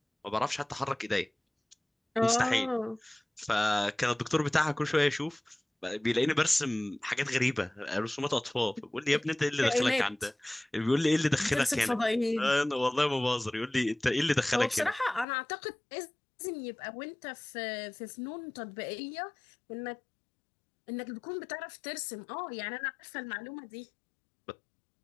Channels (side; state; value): right; drops out; at 15.2 s